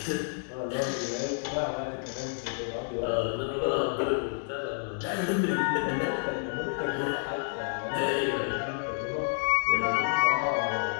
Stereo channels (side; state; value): right; silent; digital silence